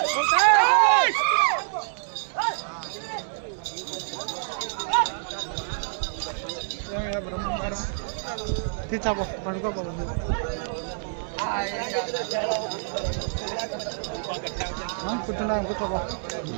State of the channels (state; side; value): silent; left; 60 dB below the other